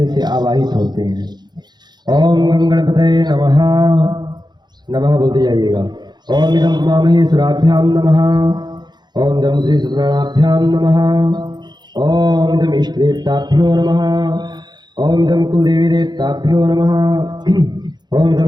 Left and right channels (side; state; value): left; late; 0.21 ms